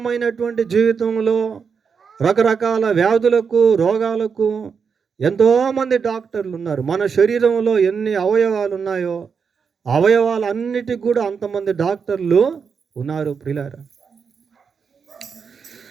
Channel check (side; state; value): left; quieter; 6.0 dB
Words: జీవితంలో రకరకాల వ్యాధులకు, రోగాలకు ఎంతోమంది డాక్టర్లు ఉన్నారు. మన శరీరంలో ఎన్ని అవయవాలు ఉన్నాయో అవయవాలన్నిటికి కూడా అంతమంది డాక్టర్లు ఉన్నారు ప్రియులారా.